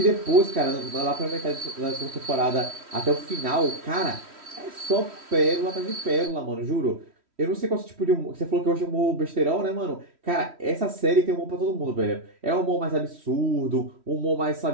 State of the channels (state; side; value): late; left; 3.1 ms